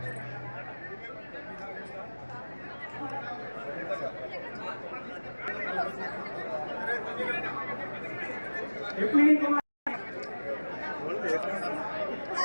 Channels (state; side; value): inverted; both; correlation -1.00